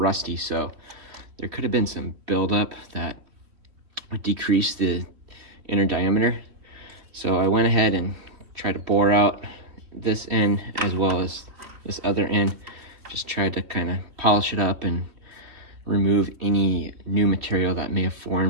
so there could have been some buildup that would decrease the inner diameter. So I went ahead and tried to bore out this end as well as this other end. Just tried to kind of polish it up and remove any new material that may have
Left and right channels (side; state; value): left; late; 3.4 ms